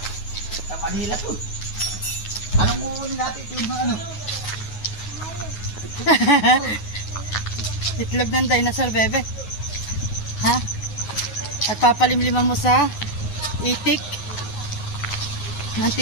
Sa Manila to. Anong muunin natin ito yung ano? Itlog ng dinosaur, bebe. Ha? At papalimliman mo sa itik ng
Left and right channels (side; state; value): right; late; 9.5 ms